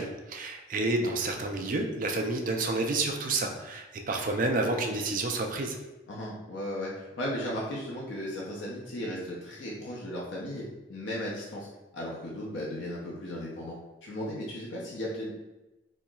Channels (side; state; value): both; normal; correlation 0.32